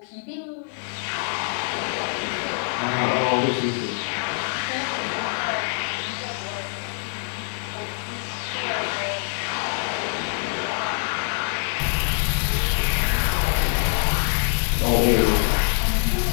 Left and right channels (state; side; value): silent; right; 55 dB below the other